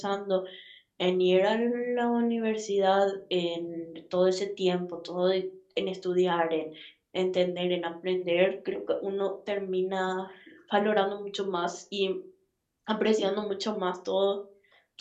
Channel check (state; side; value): identical; both; correlation 1.00